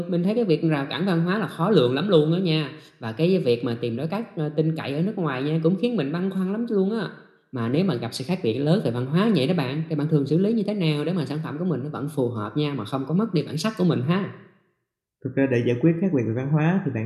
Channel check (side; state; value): both; identical; correlation 1.00